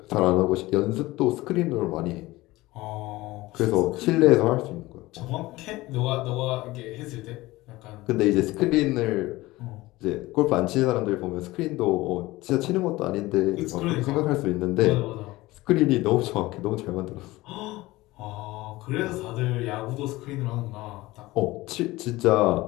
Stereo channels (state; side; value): quieter; right; 19.2 dB